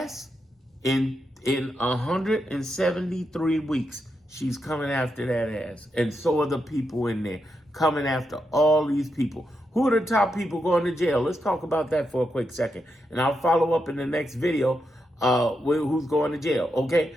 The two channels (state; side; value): normal; both; correlation 0.84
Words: in 173 weeks, she's coming after that ass. And so are the people in there coming after all these people. Who are the top people going to jail? Let's talk about that for a quick second. And I'll follow up in the next video with who's going to jail, okay?